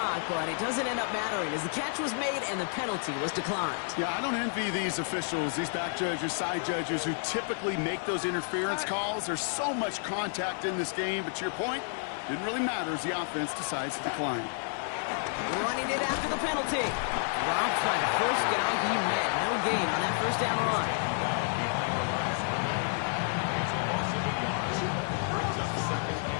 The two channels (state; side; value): silent; right; 58 dB below the other